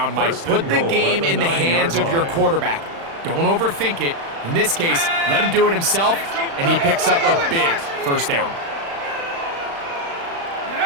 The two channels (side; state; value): left; late; 36 ms